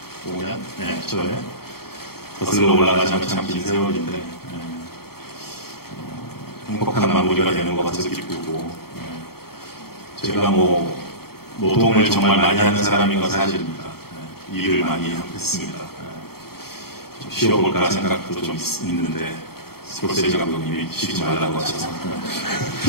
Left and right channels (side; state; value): right; late; 0.94 ms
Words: 초에 거슬러 올라가자면 참 긴 세월인데 행복한 마무리가 되는 것 같아서 기쁘고 제가 뭐 노동을 정말 많이 하는 사람인 건 사실입니다. 일을 많이 했습니다. 좀 쉬어볼까 생각도 좀 있는데 스콜세지 감독님이 쉬지 말라고 하셔서